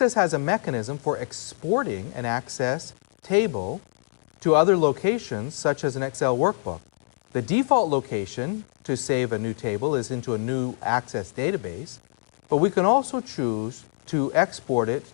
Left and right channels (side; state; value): right; silent; digital silence